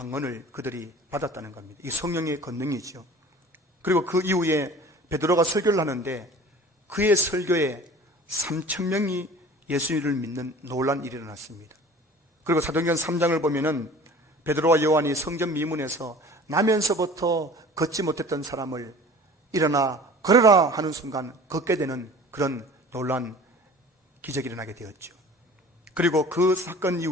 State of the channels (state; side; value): normal; both; correlation 0.44